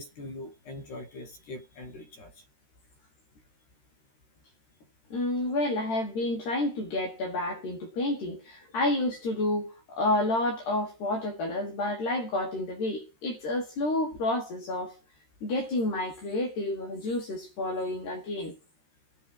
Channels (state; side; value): late; right; 13 ms